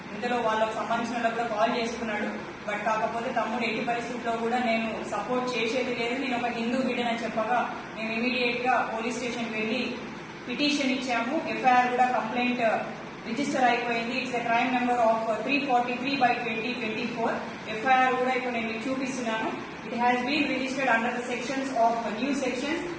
ఇందులో వాళ్ళకు సంబంధించిన వాళ్ళకు కూడా కాల్ చేసుకున్నాడు. బట్ కాకపోతే తమ్ముడు ఎట్టి పరిస్థితుల్లో కూడా నేను సపోర్ట్ చేసేది లేదు, నేను ఒక హిందూ బిడ్డనని చెప్పగా మేము ఇమీడియట్ గా పోలీస్ స్టేషన్ కి వెళ్లి పిటిషన్ ఇచ్చాము. ఎఫ్ఐఆర్ కూడా కంప్లైంట్ రిజిస్టర్ అయిపోయింది. It's a crime number of 343/2024. FIR కూడా ఇప్పుడు నేను మీకు చూపిస్తున్నాను. It has been registered under the sections of new sections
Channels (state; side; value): identical; both; correlation 1.00